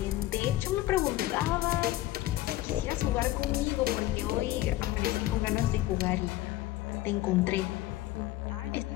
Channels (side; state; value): right; quieter; 16.0 dB